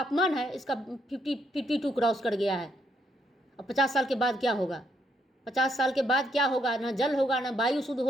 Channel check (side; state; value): both; normal; correlation 0.75